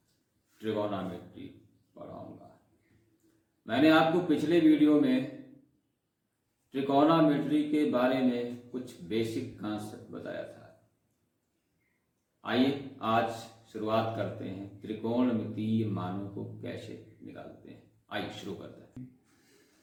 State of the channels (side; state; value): both; identical; correlation 1.00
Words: ट्रिगोनोमेट्री पढ़ाऊंगा। मैंने आपको पिछले वीडियो में ट्रिगोनोमेट्री के बारे में कुछ बेसिक कॉन्सेप्ट बताया था। आइए आज शुरुआत करते हैं, त्रिकोणमितीय मानों को कैसे निकालते हैं। आइए शुरू करते हैं।